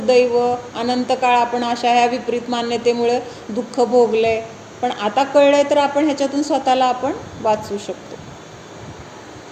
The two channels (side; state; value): both; identical; correlation 1.00